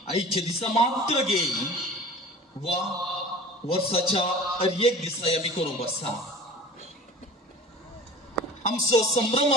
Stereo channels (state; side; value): normal; both; correlation 0.40